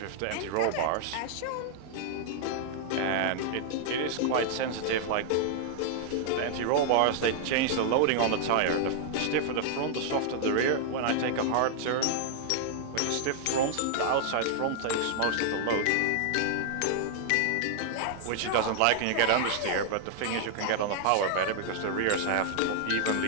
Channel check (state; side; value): different; both; correlation -0.01